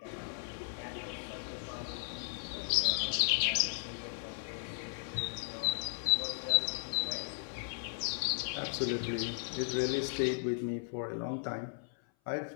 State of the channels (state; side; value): silent; right; 54 dB below the other